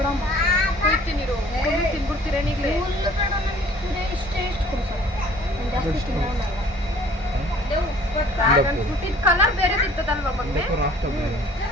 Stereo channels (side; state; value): both; normal; correlation 0.52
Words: ಕೊಡ್ತೀನಿ, ತಿನ್ಬಿಡ್ತೀರೇನು ಈಗಲೇ? ಕಲರ್ ಬೇರೆ ಇರ್ತದಲ್ವಾ ಮಗ್ನೆ?